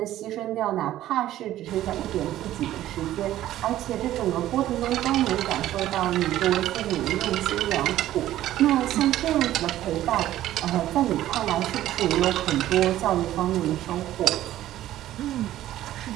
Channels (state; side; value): quieter; left; 13.6 dB